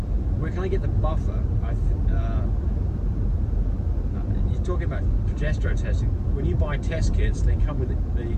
where can I get the buffer? You're talking about progesterone testing. When you buy test kits, they come with the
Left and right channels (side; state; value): both; identical; correlation 1.00